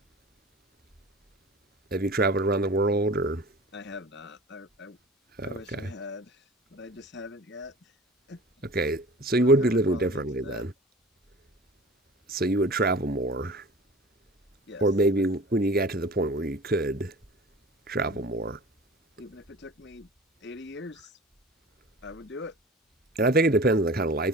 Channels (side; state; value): both; normal; correlation 0.40